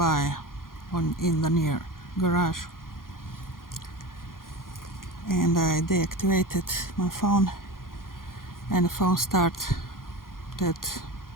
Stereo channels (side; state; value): right; late; 0.91 ms